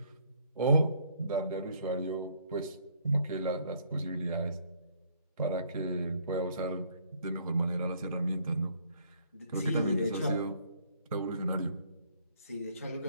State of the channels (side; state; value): both; inverted; correlation -0.64